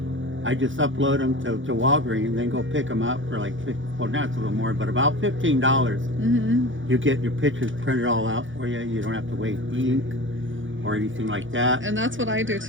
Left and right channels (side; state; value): left; late; 0.56 ms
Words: I just upload them to Walgreens and then go pick them up for like, well, now it's a little more, but about $15. You get your pictures printed all out for you. You don't have to waste ink or anything like that. And that's what I do